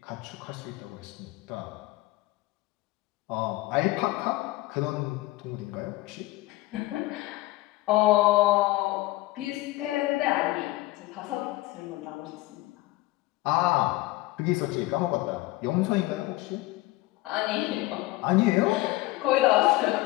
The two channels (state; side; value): quieter; right; 19.0 dB